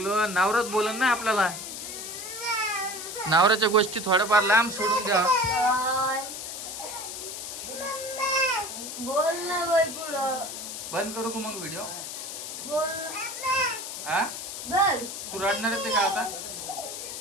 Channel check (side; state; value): left; noise; hiss, 8 dB below the sound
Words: नवराच बोलन ना आपल्याला. नवऱ्याच्या गोष्टी थोड्याफार लांब सोडून द्या. बोल ना बाई पुढं. बंद करू का मग व्हिडिओ? बोल ना. हा बघ तू रडणारच आहे का आता?